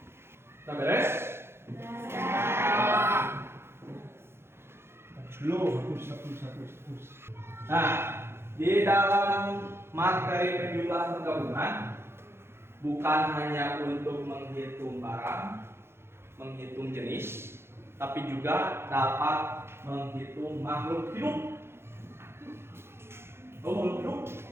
Udah beres? Hapus. Nah, di dalam materi penjumlahan penggabungan bukan hanya untuk menghitung barang, menghitung jenis, tapi juga dapat menghitung makhluk hidup. Oh, makhluk hidup.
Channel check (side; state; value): left; late; 0.12 ms